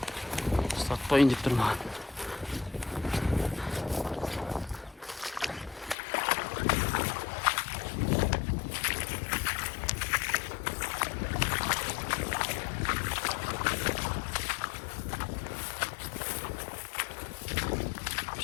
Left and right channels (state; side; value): drops out; right; at 6.0 s